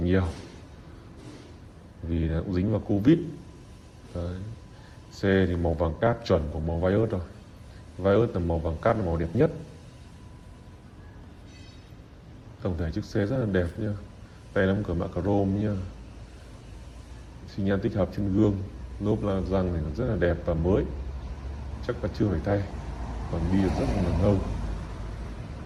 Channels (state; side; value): identical; both; correlation 1.00